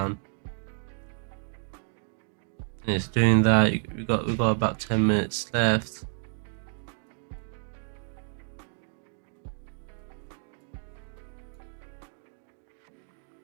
and it's doing that. We got about 10 minutes left.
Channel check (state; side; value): silent; left; 58 dB below the other